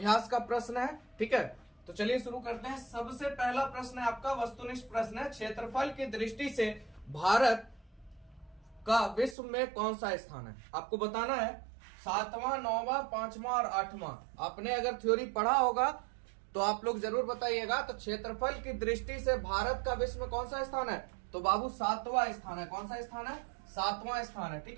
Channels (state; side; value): drops out; left; at 9.3 s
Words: का प्रश्न है। ठीक है, तो चलिए शुरू करते हैं। सबसे पहला प्रश्न है आपका वस्तुनिष्ठ प्रश्न है। क्षेत्रफल की दृष्टि से भारत का विश्व में कौन सा स्थान है? आपको बताना है 7वां, 9वां, 5वां और 8वां। आपने अगर थ्योरी पढ़ा होगा तो आप लोग जरूर बताइएगा। तो क्षेत्रफल की दृष्टि से भारत का विश्व में कौन सा स्थान है? तो बाबू 7वां स्थान है। कौन सा स्थान है? 7वां स्थान है। ठीक